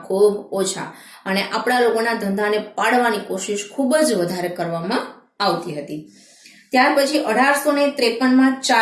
ખૂબ ઓછા, અને આપણા લોકોના ધંધાને પાડવાની કોશિશ ખૂબ જ વધારે કરવામાં આવતી હતી. ત્યાર પછી 1853માં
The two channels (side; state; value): both; identical; correlation 1.00